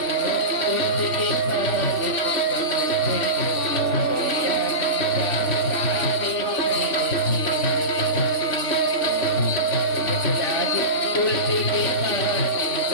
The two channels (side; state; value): right; late; 3.4 ms